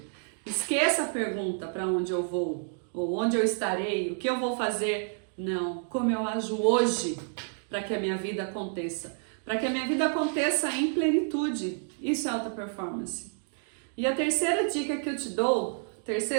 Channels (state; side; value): silent; left; 58 dB below the other